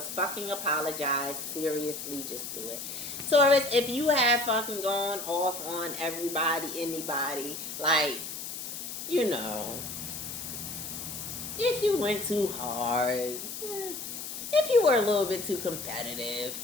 fucking apologize. Seriously, just do it. Taurus, if you have fucking gone off on everybody, anybody, like, you know, if you went too hard, if you were a little bit too competitive,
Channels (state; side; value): noise; left; hiss, 7 dB below the sound